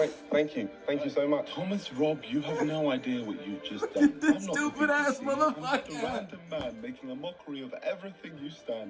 Thank you. Thank you so much. Thomas Rob, you have no idea what you've just done. This I'm not stupid the ass BBC. I'm just a motherfucker. random man making a mockery of everything you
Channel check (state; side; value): identical; both; correlation 1.00